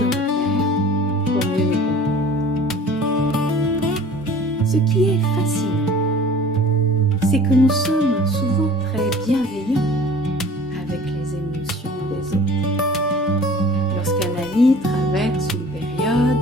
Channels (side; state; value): both; normal; correlation 0.46